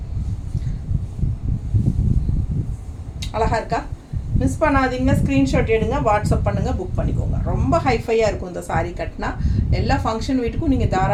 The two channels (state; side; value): identical; both; correlation 1.00